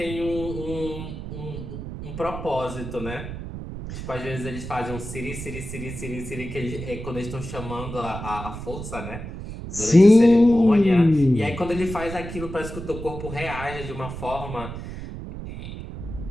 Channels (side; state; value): right; noise; rumble, 9 dB below the sound